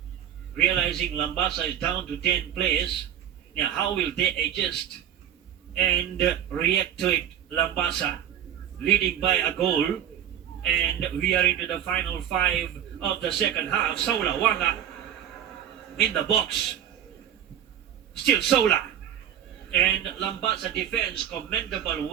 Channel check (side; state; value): left; quieter; 10.2 dB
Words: realizing Lambasa is down to 10 players. Now how will they adjust and react to it? Lambasa leading by a goal, and we are into the final 5 of the second half. Sola Wanga in the box, still Sola, and Lambasa defense, commendable